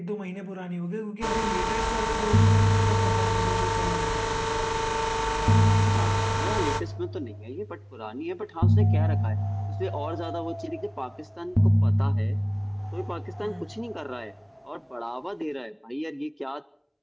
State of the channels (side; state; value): both; identical; correlation 1.00